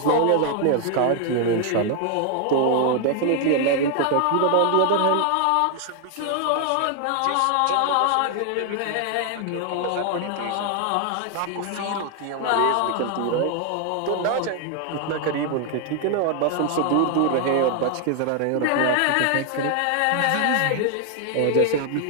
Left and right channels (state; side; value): different; both; correlation 0.00